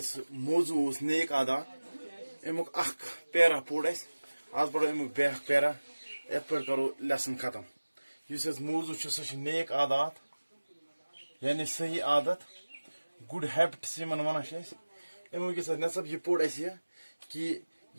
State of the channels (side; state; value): both; inverted; correlation -1.00